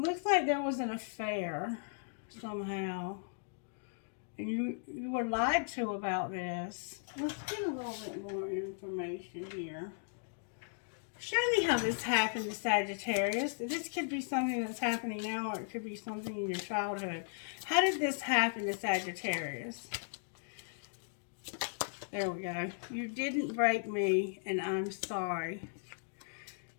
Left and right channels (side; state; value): right; silent; digital silence